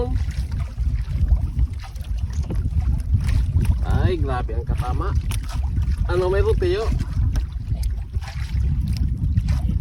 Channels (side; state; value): both; identical; correlation 1.00